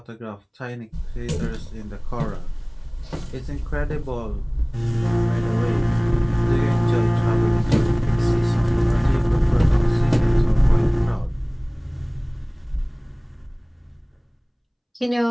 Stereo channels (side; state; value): both; identical; correlation 1.00